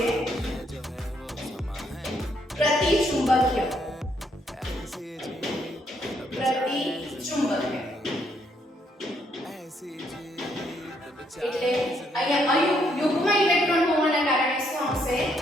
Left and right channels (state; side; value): normal; both; correlation 0.72